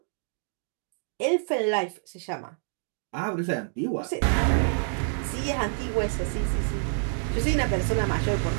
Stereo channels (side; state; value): left; silent; digital silence